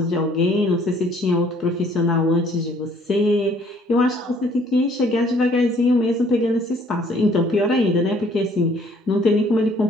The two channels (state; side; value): normal; both; correlation 0.60